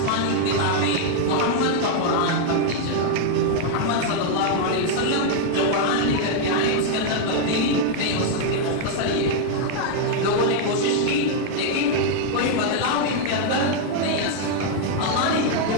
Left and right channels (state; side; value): different; both; correlation 0.00